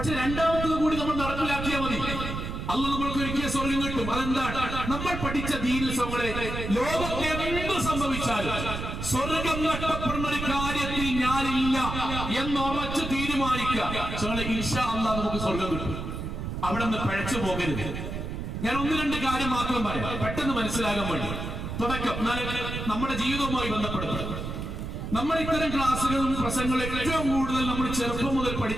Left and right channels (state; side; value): noise; right; rumble, 5 dB below the sound